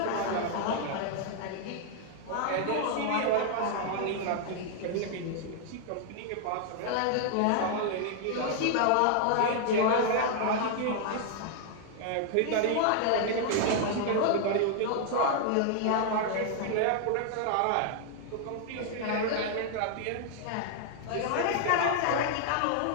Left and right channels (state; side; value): different; both; correlation 0.00